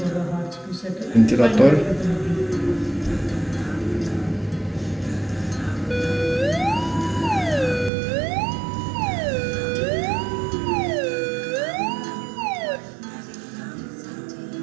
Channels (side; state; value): left; drops out; at 7.9 s